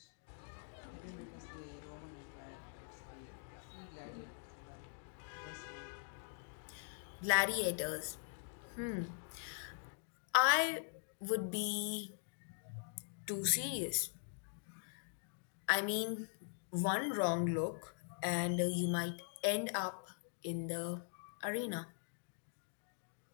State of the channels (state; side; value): silent; right; digital silence